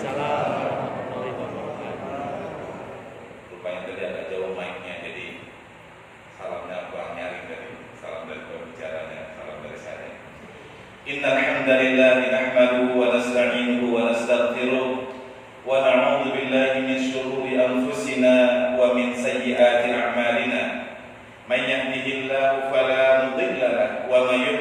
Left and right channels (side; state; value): both; identical; correlation 1.00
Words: warahmatullahi wabarakatuh. Rupanya tadi agak jauh mic-nya, jadi salamnya kurang nyaring dari salam dari pembicaranya, salam dari saya. Innal hamdalillah nahmaduhu wa nasta'inuhu wa nastaghfiruh wa na'udzu billahi min shururi anfusina wa min sayyiati a'malina. Man yahdihillahu fala mudilla lahu wa man